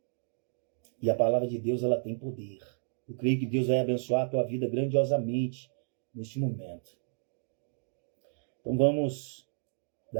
E a palavra de Deus, ela tem poder. Eu creio que Deus vai abençoar a tua vida grandiosamente neste momento. Então vamos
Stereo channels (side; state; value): left; silent; digital silence